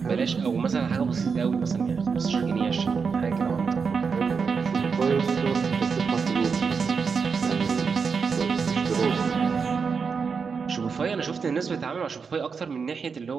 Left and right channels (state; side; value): quieter; left; 5.6 dB